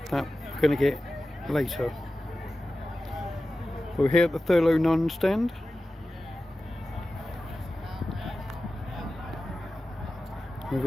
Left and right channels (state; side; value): normal; both; correlation 0.95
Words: that we're going to get later. We're here at the Thurlow Nunn stand.